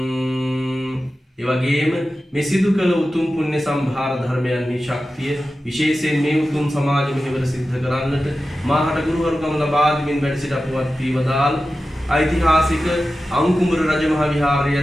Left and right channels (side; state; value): both; normal; correlation 0.93